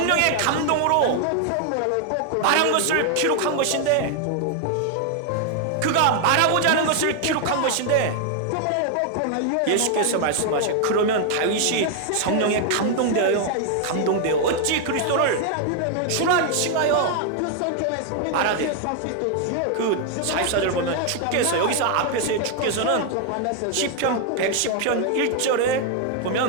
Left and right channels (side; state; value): both; different; correlation 0.00